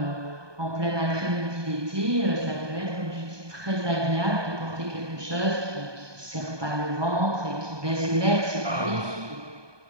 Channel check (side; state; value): left; late; 1.2 ms